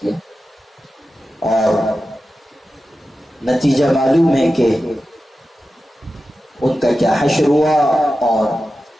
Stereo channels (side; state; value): both; normal; correlation 0.93